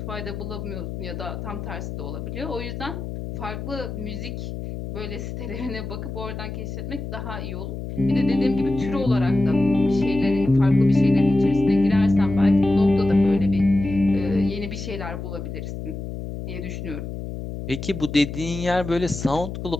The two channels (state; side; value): noise; left; hum, 7 dB below the sound